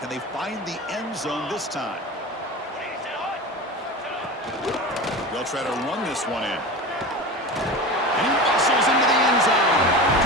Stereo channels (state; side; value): normal; both; correlation 0.29